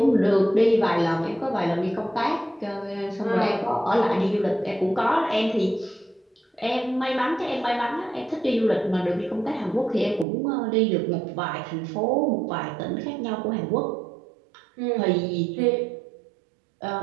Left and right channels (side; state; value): left; drops out; at 10.2 s